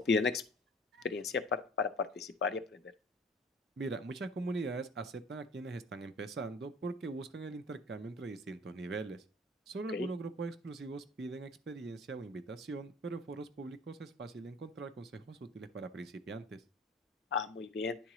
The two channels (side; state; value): both; normal; correlation 0.46